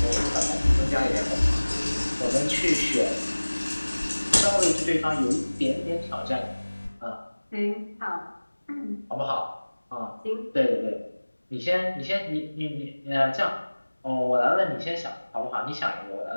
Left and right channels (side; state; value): both; inverted; correlation -1.00